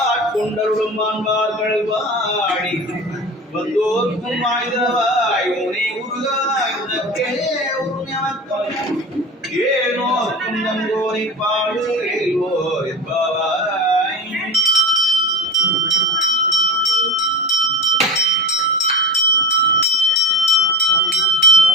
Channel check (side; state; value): both; normal; correlation 0.31